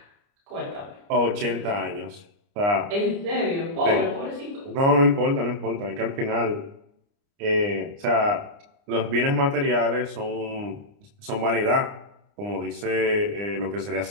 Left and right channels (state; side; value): late; left; 29 ms